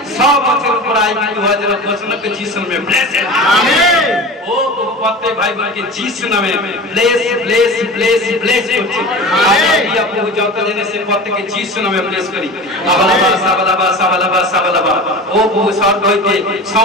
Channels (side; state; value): both; normal; correlation 0.33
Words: সব বছর উপর আয় কিন্তু হওয়ার জন্য ঘোষণা করে যিশু নামে ব্লেস আমেন ও প্রত্যেক ভাই বোনকে যিশু নামে ব্লেস ব্লেস ব্লেস ব্লেস করছি আমেন প্রভু যত জেনে সে প্রত্যেককে যিশু নামে ব্লেস করি সাবালাবা সাবালাবা সাবালাবা সাবালাবা ও প্রভু স্বর্গ হইতে